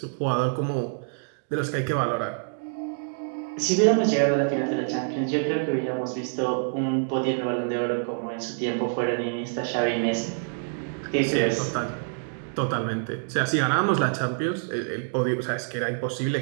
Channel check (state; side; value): silent; left; digital silence